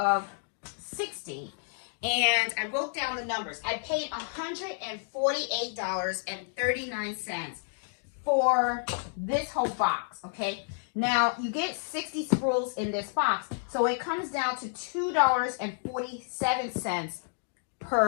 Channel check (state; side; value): silent; right; digital silence